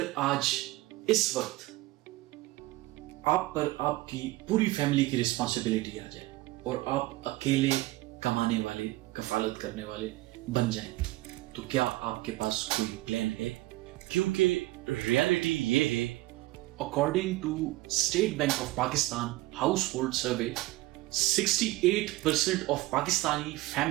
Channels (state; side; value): quieter; left; 18.9 dB